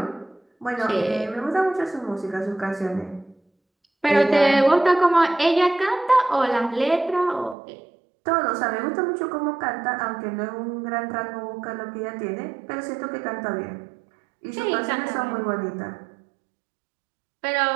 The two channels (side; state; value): left; drops out; at 7.6 s